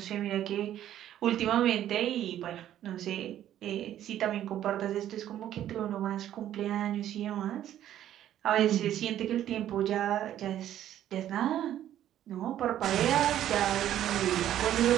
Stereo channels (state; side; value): quieter; left; 11.7 dB